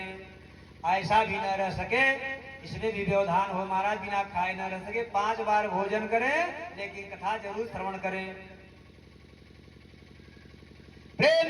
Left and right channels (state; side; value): identical; both; correlation 1.00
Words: ऐसा भी न रह सके, इसमें भी व्यवधान हो महाराज, बिना खाए न रह सके, 5 बार भोजन करें लेकिन कथा जरूर श्रवण करें।